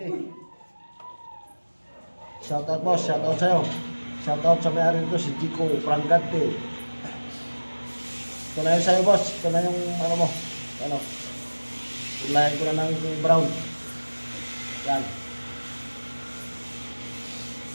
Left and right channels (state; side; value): inverted; both; correlation -1.00